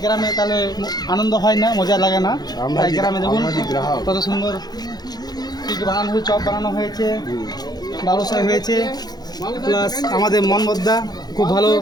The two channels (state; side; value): late; right; 0.19 ms